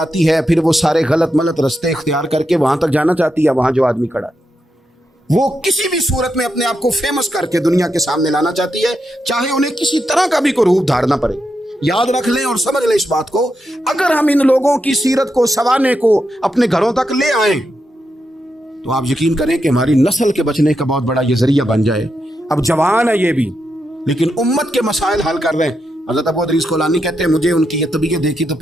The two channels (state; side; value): normal; both; correlation 0.85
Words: ہے, پھر وہ سارے غلط ملت رستے اختیار کر کے وہاں تک جانا چاہتی ہے. وہاں جو آدمی کھڑا ہے وہ کسی بھی صورت میں اپنے آپ کو فیمس کر کے دنیا کے سامنے لانا چاہتی ہے, چاہے انہیں کسی طرح کا بھی کوئی روپ دھارنا پڑے. یاد رکھ لیں اور سمجھ لیں اس بات کو, اگر ہم ان لوگوں کی سیرت کو, سوانے کو اپنے گھروں تک لے آئیں تو آپ یقین کریں کہ ہماری نسل کے بچنے کا بہت بڑا یہ ذریعہ بن جائے. اب جوان ہے یہ بھی, لیکن امت کے مسائل حل کر رہے ہیں. حضرت ابو ادریس کولانی کہتے ہیں مجھے ان کی یہ طبیعت دیکھی تو